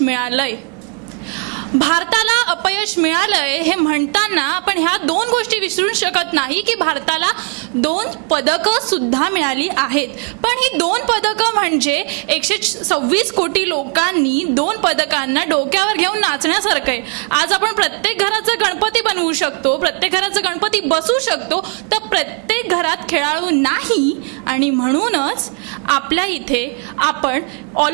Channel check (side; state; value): left; quieter; 39.3 dB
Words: मिळालंय. भारताला अपयश मिळालंय हे म्हणताना आपण ह्या दोन गोष्टी विसरू शकत नाही की भारताला 2 पदकं सुद्धा मिळाली आहेत. पण ही 2 पदकं म्हणजे 126 कोटी लोकांनी 2 पदकांना डोक्यावर घेऊन नाचण्यासारखं आहे. आज आपण प्रत्येक घराचा गणपती बनवू शकतो, प्रत्येक घराचा गणपती बसवू शकतो, तर प्रत्येक घरात खेळाडू नाही. आणि म्हणूनच आपल्या इथे आपण